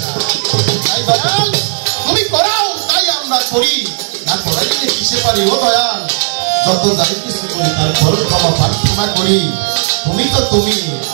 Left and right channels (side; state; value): left; silent; digital silence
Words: না তাই দয়াল তুমি করাও তাই আমরা করি না করাইলে কিসে পারি ও দয়াল যত যাই কিছু করি তার ফল ক্ষমা প্রার্থনা করি তুমি তো তুমি